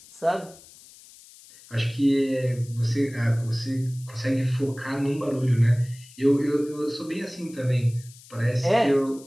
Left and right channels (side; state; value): left; noise; hiss, 22 dB below the sound